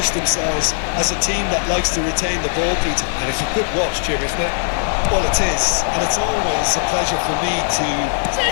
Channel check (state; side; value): silent; right; 58 dB below the other